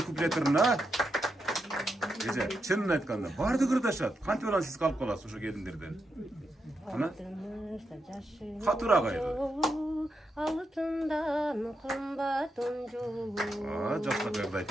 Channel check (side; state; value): both; normal; correlation 0.84